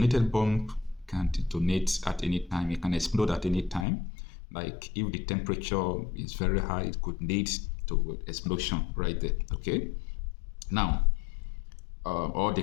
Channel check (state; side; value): drops out; right; at 3.9 s